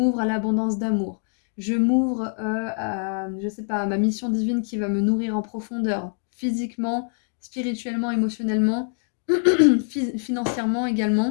à l'abondance d'amour, je m'ouvre à, je sais pas, à ma mission divine qui va me nourrir en profondeur, physiquement, spirituellement, émotionnellement, financièrement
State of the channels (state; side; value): silent; right; 62 dB below the other